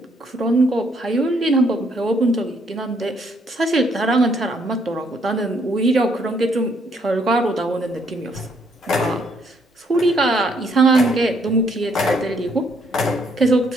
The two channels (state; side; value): normal; both; correlation 0.70